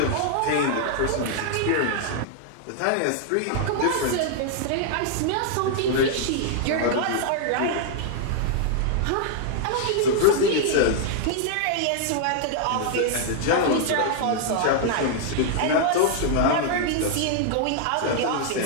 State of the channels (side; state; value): both; different; correlation 0.00